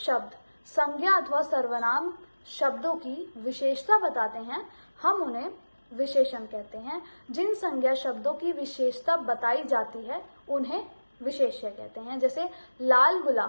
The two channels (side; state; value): both; inverted; correlation -1.00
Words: संज्ञा अथवा सर्वनाम शब्दों की विशेषता बताते हैं हम उन्हें विशेषण कहते हैं। जिन संज्ञा शब्दों की विशेषता बताई जाती है उन्हें विशेष्य कहते हैं। जैसे लाल